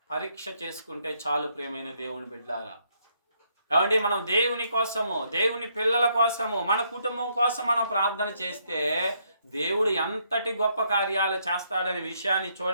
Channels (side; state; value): both; inverted; correlation -0.73